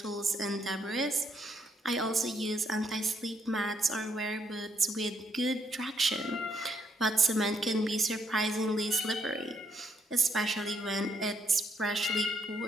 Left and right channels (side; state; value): both; normal; correlation 0.73